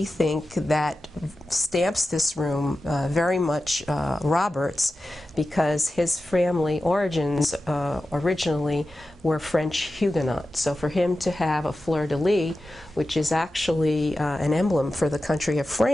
think that stamps this room very much Robert's, because his family origins originally were French Huguenot. So for him to have a fleur-de-lis, which is actually an emblem for the country of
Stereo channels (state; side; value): normal; both; correlation 0.93